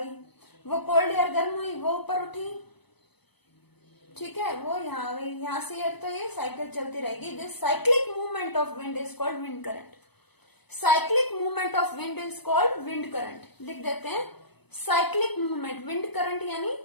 वो कोल्ड एयर गर्म हुई वो ऊपर उठी, ठीक है, वो यहाँ आ गई, यहाँ से एयर, तो ये साइकिल चलती रहेगी। This cyclic movement of wind is called wind current. Cyclic movement of wind is called wind current. लिख देते हैं साइक्लिक मूवमेंट, विंड करंट यानी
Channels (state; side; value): late; right; 0.98 ms